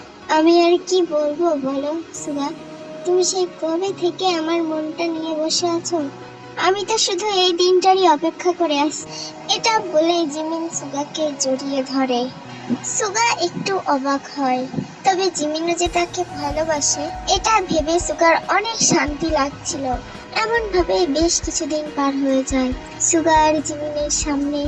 আমি আর কি বলবো বলো সুগা, তুমি সেই কবে থেকে আমার মনটা নিয়ে বসে আছো, আমি তো শুধু এই দিনটারই অপেক্ষা করে আছি। এটা বলে জিমিন সুগাকে জড়িয়ে ধরে। সুগা একটু অবাক হয়, তবে জিমিনও যে তাকে ভালোবাসে এটা ভেবে সুগার অনেক শান্তি লাগছিল। এমন ভাবে বেশ কিছুদিন পার হয়ে যায়। সুগা আর জিমিনের সামনে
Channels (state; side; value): identical; both; correlation 1.00